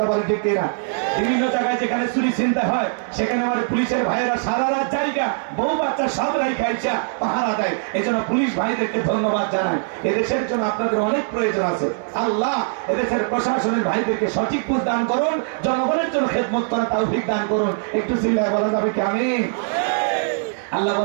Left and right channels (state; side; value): silent; left; digital silence